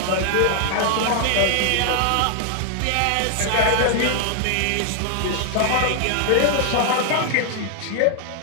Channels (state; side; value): different; both; correlation 0.00